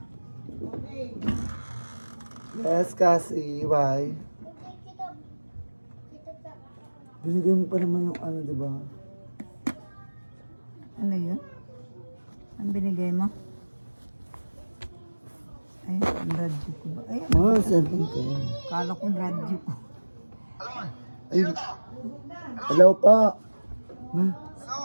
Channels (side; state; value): both; inverted; correlation -1.00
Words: Yes, Cassie. Why? Binigay mo pa naman yung diba? Ano yun? Ang binigay mo? Ay, ang radyo ko ba? Ay, Cellphone ko yan. kala ko radyo ko. Ay, hello pa. Ma,